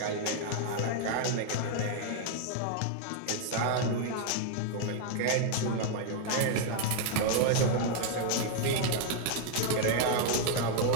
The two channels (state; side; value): different; both; correlation 0.00